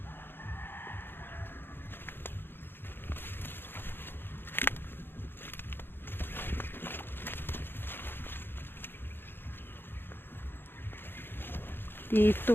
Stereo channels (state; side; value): late; right; 0.10 ms